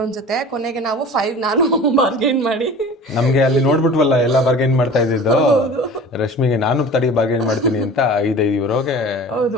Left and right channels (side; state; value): both; normal; correlation 0.40